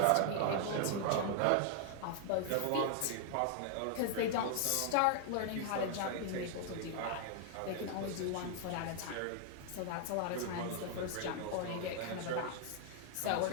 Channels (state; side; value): different; both; correlation 0.00